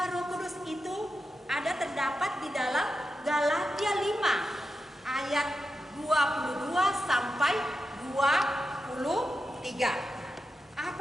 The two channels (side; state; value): both; normal; correlation 0.89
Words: Roh Kudus itu ada terdapat di dalam Galatia 5 ayat 22 sampai 23.